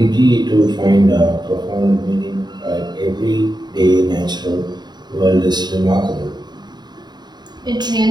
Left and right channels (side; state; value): left; late; 0.21 ms